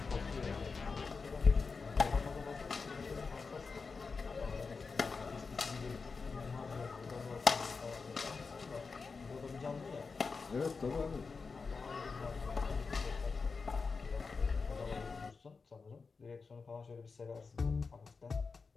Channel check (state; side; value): quieter; right; 4.7 dB